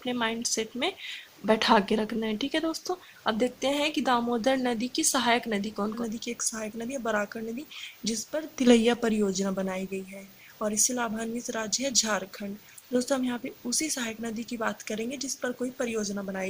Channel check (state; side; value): identical; both; correlation 1.00